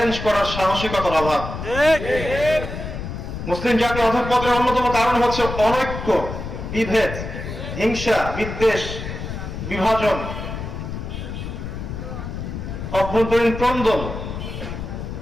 করার সাহসিকতার অভাব। মুসলিম জাতির অধঃপতনের অন্যতম কারণ হচ্ছে অনৈক্য, বিভেদ, হিংসা, বিদ্বেষ, বিভাজন, অভ্যন্তরীণ ক্রন্দন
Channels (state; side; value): noise; left; rumble, 7 dB below the sound